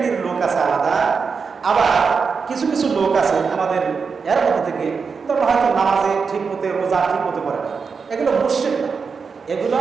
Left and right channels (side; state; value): left; quieter; 5.4 dB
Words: লোক আছে আলাদা। আবার কিছু কিছু লোক আছে আমাদের এর মধ্যে থেকে, তবে হয়তো নামাজে ঠিক মতো, রোজা ঠিক মতো করে না, এগুলো মুশরিক না, এগুলো